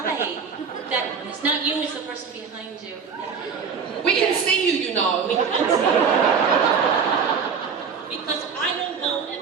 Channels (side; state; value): left; quieter; 6.1 dB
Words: That it's not you. It's the person behind you. We can see you, you know. We can see you. Because I don't go